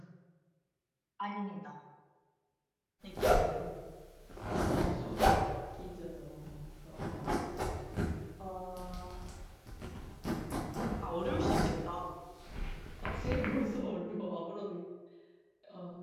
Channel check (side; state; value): both; identical; correlation 1.00